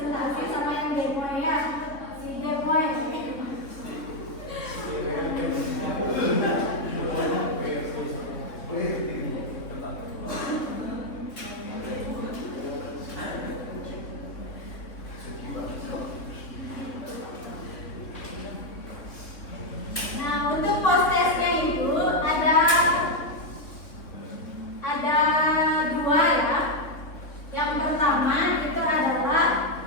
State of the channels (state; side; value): late; right; 3.5 ms